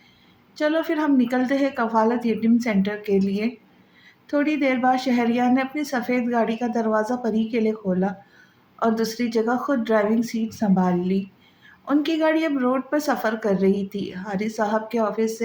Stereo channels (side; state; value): both; identical; correlation 1.00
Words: चलो फिर हम निकलते हैं कफालत यतीम सेंटर के लिए। थोड़ी देर बाद शहरियार ने अपनी सफ़ेद गाड़ी का दरवाज़ा परी के लिए खोला और दूसरी जगह खुद ड्राइविंग सीट संभाल ली। उनकी गाड़ी अब रोड पर सफ़र कर रही थी। हारिस साहब के ऑफिस